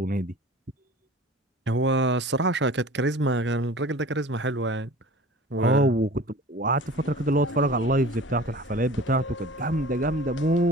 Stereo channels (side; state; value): both; normal; correlation 0.42